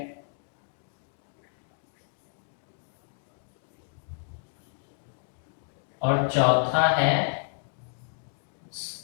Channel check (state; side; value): silent; right; digital silence